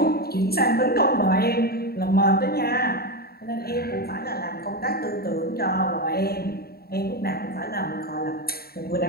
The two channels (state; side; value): late; right; 0.45 ms